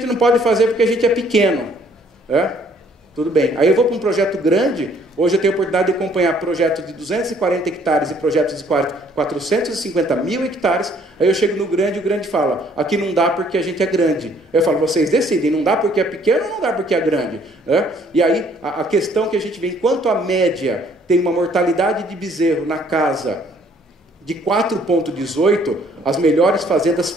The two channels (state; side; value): normal; both; correlation 0.62